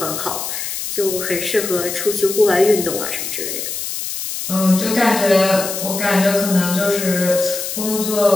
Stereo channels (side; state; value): left; noise; hiss, 5 dB below the sound